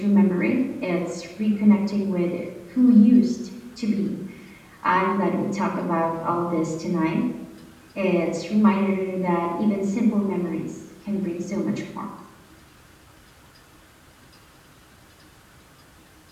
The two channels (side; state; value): both; identical; correlation 1.00